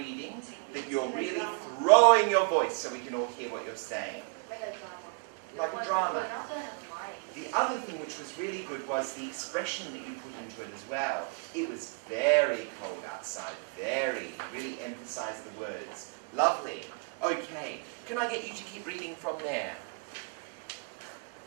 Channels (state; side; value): quieter; left; 34.4 dB